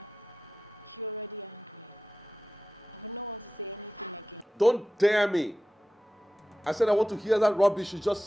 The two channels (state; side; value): normal; both; correlation 0.93